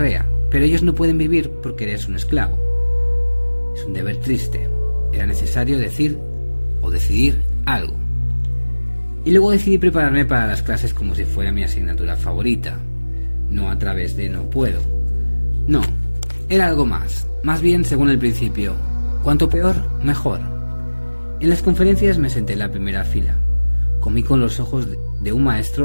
pero ellos no pueden vivir porque eres un esclavo. Es un deber triste. Era necesario decir o decidir algo. Y luego decidí prepararme para las clases como si fuera mi asignatura favorita, no a través de no puedo. No, era algo más bien según el principio: cuanto peor, mejor. En las conferencias me senté en la primera fila. Comí con los ojos de un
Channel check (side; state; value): both; inverted; correlation -1.00